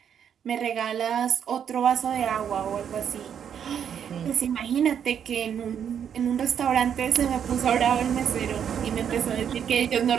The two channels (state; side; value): quieter; left; 8.4 dB